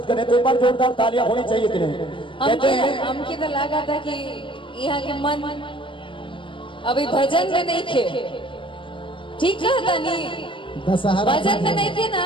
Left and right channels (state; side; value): late; right; 0.25 ms